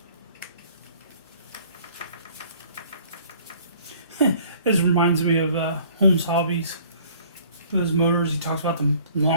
This reminds me of Holmes' hobbies. With his motors, he talks about the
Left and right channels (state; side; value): inverted; both; correlation -0.54